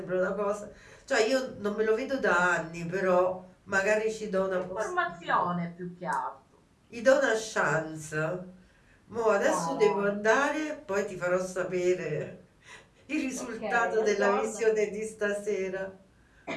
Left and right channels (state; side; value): identical; both; correlation 1.00